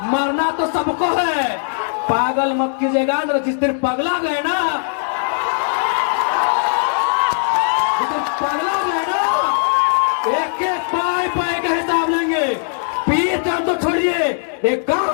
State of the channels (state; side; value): silent; right; 67 dB below the other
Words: मरना तो सबको है, पागल मत कीजिएगा। जिस दिन पगला गए ना, एक पाए का हिसाब लेंगे। पीर टाण तो छोड़िए, एक